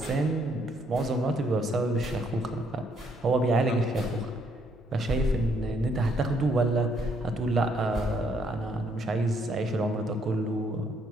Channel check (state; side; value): normal; both; correlation 0.70